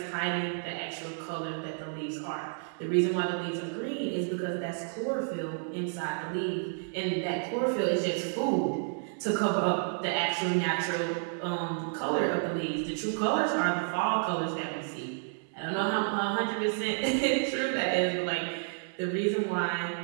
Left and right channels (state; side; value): silent; left; digital silence